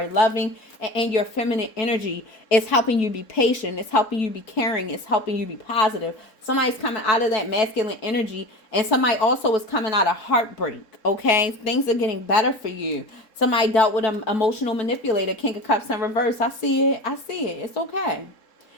loving, and your feminine energy is helping you be patient. It's helping you be caring. It's helping you be positive. Somebody's coming out of that masculine energy, and somebody also is coming out of heartbreak. Okay, things are getting better for you. Somebody dealt with an emotional manipulator, King of Cups in reverse. I see it. I see it. It's okay.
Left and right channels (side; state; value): right; late; 4.6 ms